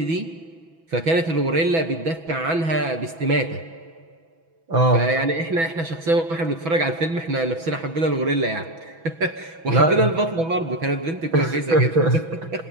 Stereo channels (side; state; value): left; late; 6.1 ms